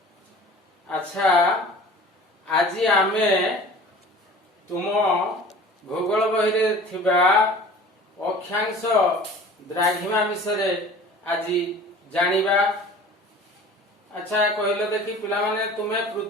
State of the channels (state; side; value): normal; both; correlation 0.43